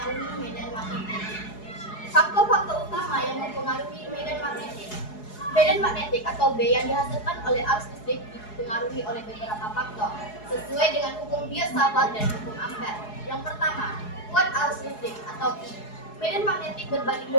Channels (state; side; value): late; right; 4.7 ms